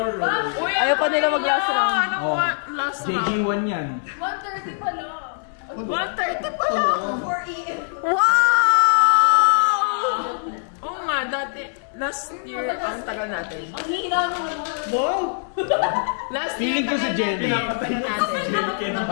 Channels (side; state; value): right; silent; digital silence